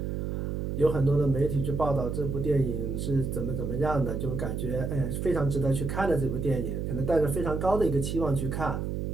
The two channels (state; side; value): noise; right; hum, 2 dB below the sound